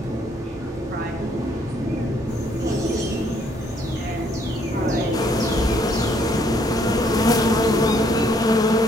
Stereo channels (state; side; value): normal; both; correlation 0.67